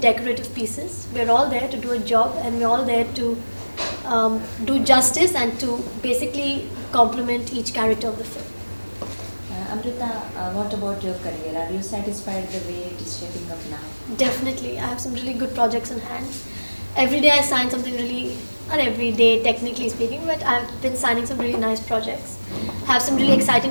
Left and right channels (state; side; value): inverted; both; correlation -1.00